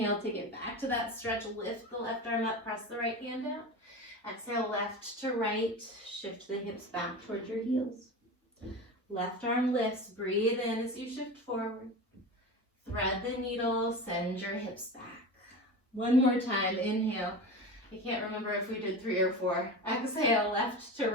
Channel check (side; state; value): both; normal; correlation 0.28